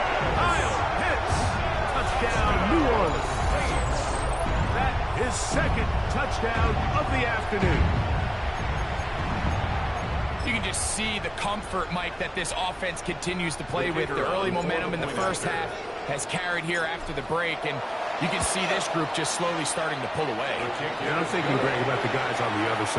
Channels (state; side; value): identical; both; correlation 1.00